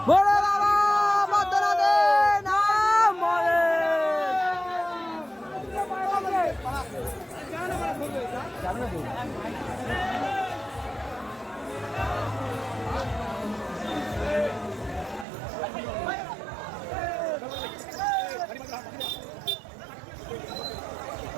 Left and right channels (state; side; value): drops out; left; at 15.2 s